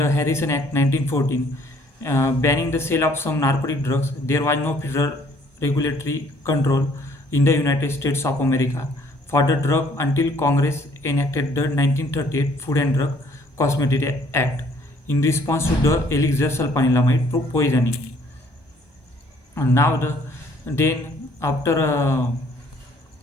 Harrison Act 1914 banning the sale of some narcotic drugs, there was no federal regulatory control in the United States of America for the drug until Congress enacted the 1938 Food and Drug Cosmetic Act in response to the elixir sulfanilamide poisoning. And now then after uh,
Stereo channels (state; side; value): late; right; 1.2 ms